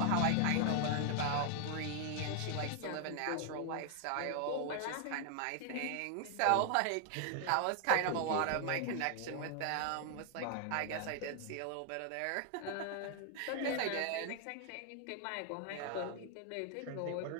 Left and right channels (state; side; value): different; both; correlation 0.00